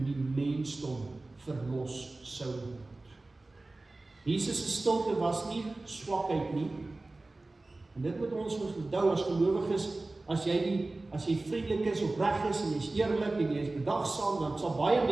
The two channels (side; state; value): left; quieter; 3.1 dB